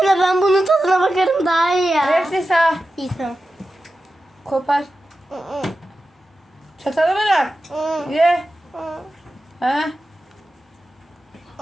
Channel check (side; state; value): both; normal; correlation 0.92